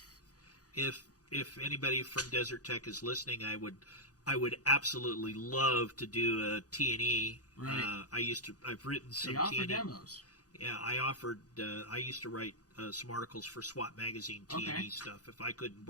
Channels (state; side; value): late; right; 0.67 ms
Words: If anybody from Desert Tech is listening, I would absolutely love to do a T&E. Right. I've written some They offer T&E. demos. Yeah, I used to write some articles for SWAT magazine T&E stuff. If I couldn't